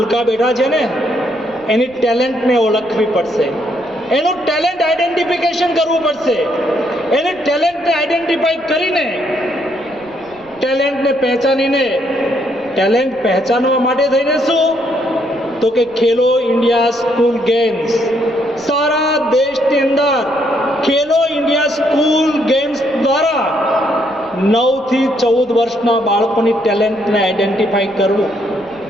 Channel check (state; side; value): noise; right; rumble, 27 dB below the sound